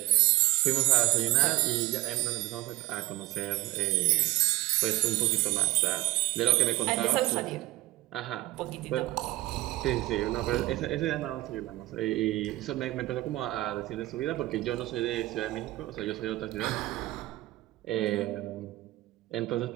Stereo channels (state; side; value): quieter; left; 18.3 dB